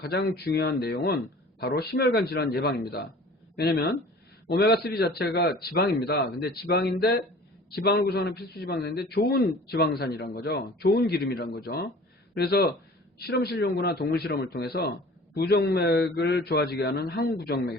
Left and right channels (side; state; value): both; normal; correlation 0.45